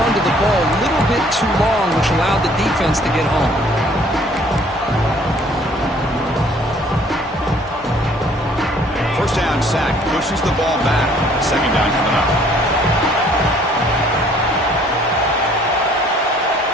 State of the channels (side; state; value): both; normal; correlation 0.59